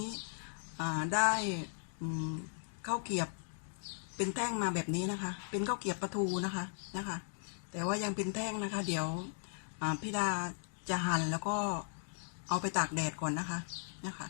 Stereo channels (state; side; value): silent; right; digital silence